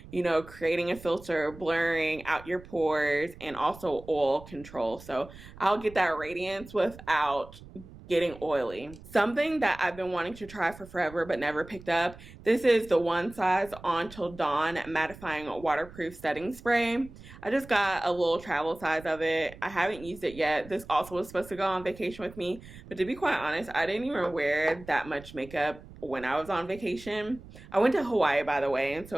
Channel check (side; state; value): right; noise; rumble, 18 dB below the sound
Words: you know, creating a filter, blurring out your pores, and also oil control. So I'll get that radiance without getting oily. Something that I've been wanting to try for forever but never picked up. This is the One Size On Till Dawn Mattifying Waterproof Setting Spray. I just got a little travel size of it. I haven't used it yet. This also was supposed to go on vacation with me, but to be quite honest, I didn't even wear that much makeup when I was on vacation. I went to Hawaii, by the way, and